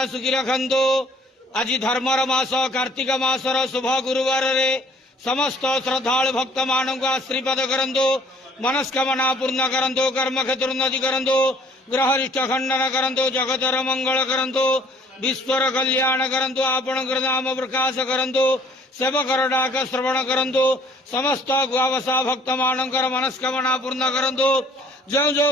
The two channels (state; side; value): normal; both; correlation 0.57